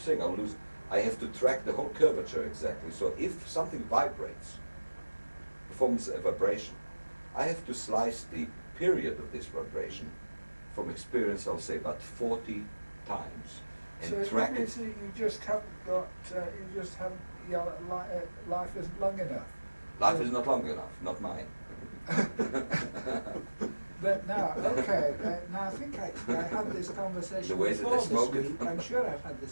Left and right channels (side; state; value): both; inverted; correlation -1.00